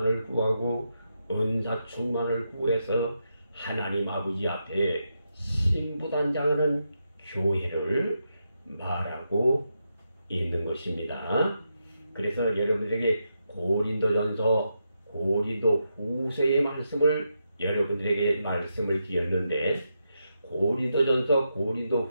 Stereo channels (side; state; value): both; inverted; correlation -0.84